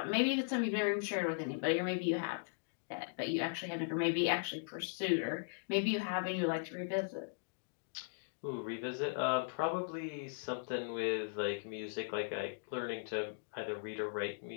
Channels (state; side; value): silent; right; digital silence